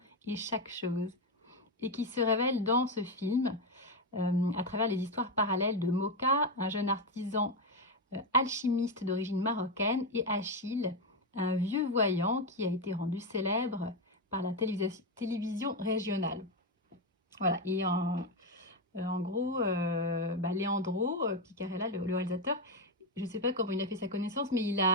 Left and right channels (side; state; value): both; normal; correlation 0.08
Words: et chaque chose, et qui se révèle dans ce film à travers les histoires parallèles de Moka, un jeune artisan alchimiste d'origine marocaine, et Achille, un vieux voyant qui a été rendu célèbre par la télévision régionale. Voilà, et en gros, Leandro Piccarella, le réalisateur, je ne sais pas comment il a fait sa connaissance, mais il